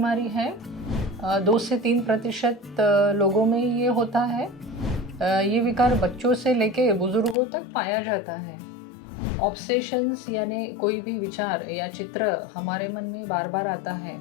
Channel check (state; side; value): drops out; right; at 7.4 s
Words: है। 2 से 3% लोगों में ये होता है। ये विकार बच्चों से लेके बुजुर्गों तक पाया जाता है। ऑब्सेशंस यानी कोई भी विचार या चित्र हमारे मन में बार बार आता है